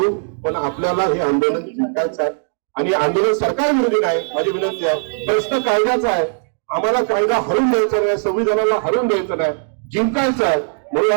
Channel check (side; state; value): left; silent; digital silence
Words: पण आपल्याला हे आंदोलन जिंकायचं आहे. आणि आंदोलन सरकार विरोधी नाही. माझी विनंती आहे, प्रश्न कायद्याचा आहे. आम्हाला कायदा हरवून द्यायचा नाही, संविधानाला हरवून द्यायचं नाही, जिंकायचं आहे. म्हणून